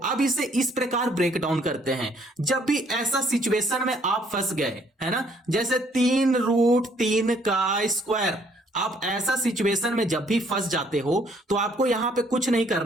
अब इसे इस प्रकार ब्रेक डाउन करते हैं। जब भी ऐसा सिचुएशन में आप फंस गए, है ना, जैसे 3√3 का स्क्वायर, आप ऐसा सिचुएशन में जब भी फंस जाते हो तो आपको यहां पे कुछ नहीं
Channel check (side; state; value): both; normal; correlation 0.64